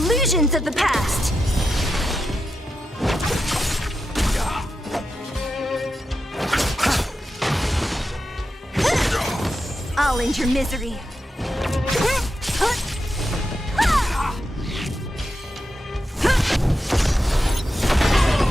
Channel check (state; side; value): normal; both; correlation 0.88